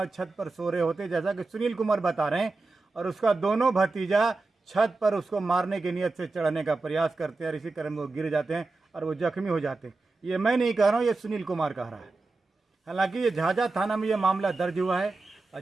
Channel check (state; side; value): quieter; left; 3.5 dB